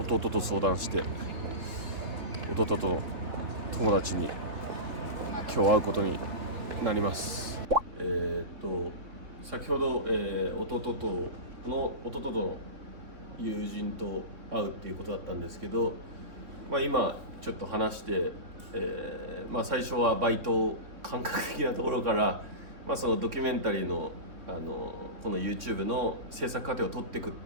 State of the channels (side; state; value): left; late; 3.9 ms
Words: と弟と相談して弟との友達に今日会うことになります。先ほど、弟との友人と会うっていうことだったんですけど、今ちょっと話して、最初はバイト感覚的なところから、そのドキュメンタリーの、この YouTube の制作過程を撮っていくっ